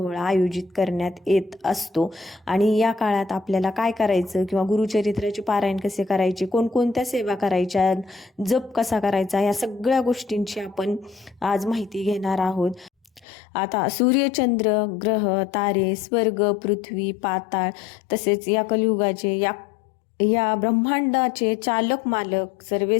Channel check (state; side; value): drops out; right; at 13.2 s